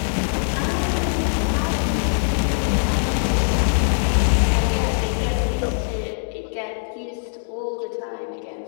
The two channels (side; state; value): right; silent; digital silence